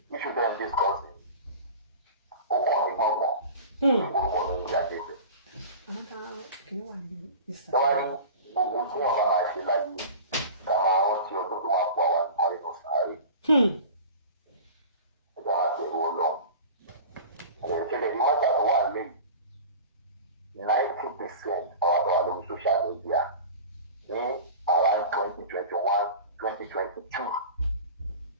issue then discussing. Orúkọ mi Iyalaje. Tọ́wárí gbogbo tí wọ́n bá máa ṣe láyé ká máa rántí ọdún tó máa kó àwọn àrí lọ sáré. Ẹja máa bẹ̀rù Ọlọ́run. Ìṣẹ̀lẹ̀ ní mọ́tà tó wà lẹ́yìn 90% àwọn àtọwà lórí social media ní around 2021, 2022.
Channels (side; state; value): both; inverted; correlation -0.36